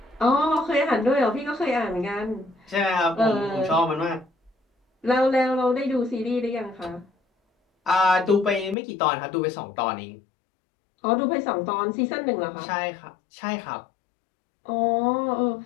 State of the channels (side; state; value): right; drops out; at 8.8 s